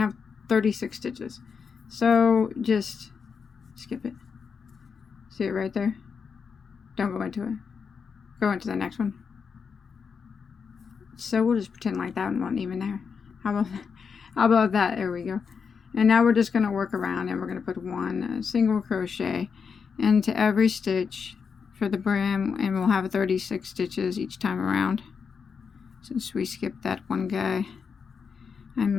have 36 stitches. So just skip it. See it right there? Don't go into it. Go into the next one. So we'll just pretend like that one wasn't even there. How about that? There we go. And now we're just going to work around, and we're going to put 1 single crochet into every stitch for the brim, and we'll have 36 stitches each time around. Since we skipped that one guy,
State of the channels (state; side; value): quieter; right; 6.0 dB